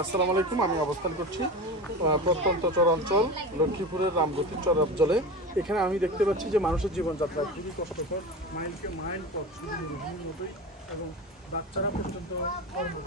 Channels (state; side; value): normal; both; correlation 0.28